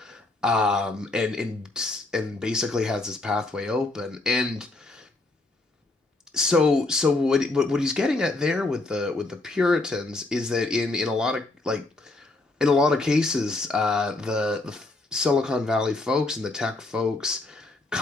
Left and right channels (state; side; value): quieter; right; 3.1 dB